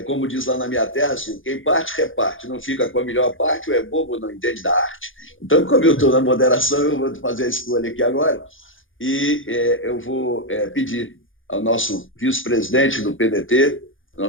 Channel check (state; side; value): late; right; 0.58 ms